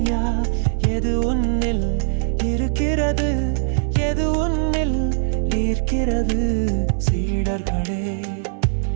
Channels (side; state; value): left; silent; digital silence